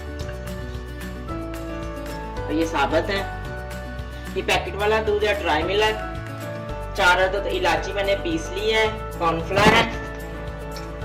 तो ये साबुत है, ये पैकेट वाला दूध है, ड्राई मिल्क। 4 अदद इलायची मैंने पीस ली है, कॉर्नफ्लावर है,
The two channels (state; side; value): identical; both; correlation 1.00